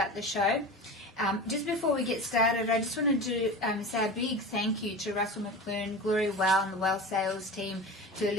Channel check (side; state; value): both; normal; correlation 0.31